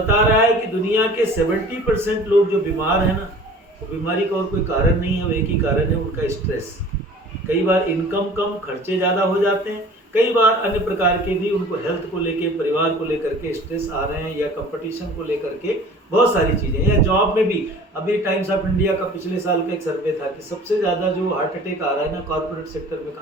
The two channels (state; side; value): normal; both; correlation 0.45